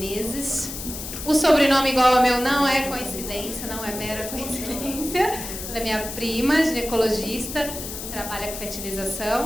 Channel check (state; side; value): noise; left; hiss, 8 dB below the sound